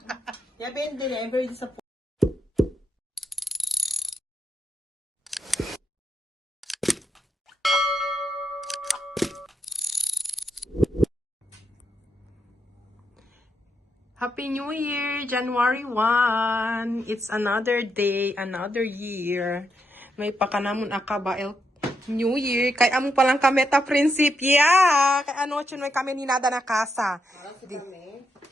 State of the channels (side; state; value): both; normal; correlation 0.81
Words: Yabin din niya. I'm very disappointed. Happy New Year! January 1! It's another day, another year. May pakanamon akaba New Year. Kay amo palang kami ta prinsipya. Kay ano chun may kami ni nada na kasa. Para sa kami.